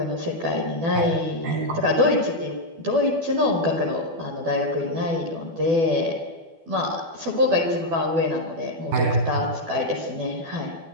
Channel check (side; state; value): left; late; 12 ms